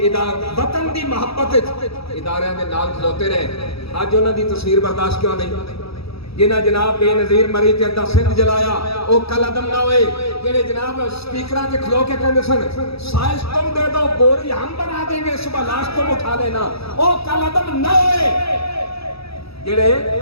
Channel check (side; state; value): right; late; 0.77 ms